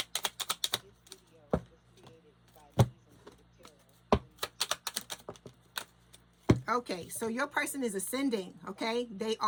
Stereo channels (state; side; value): identical; both; correlation 1.00